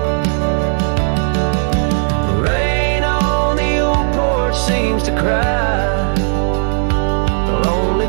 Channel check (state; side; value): silent; left; digital silence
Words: Rain on the old porch seems to cry, lonely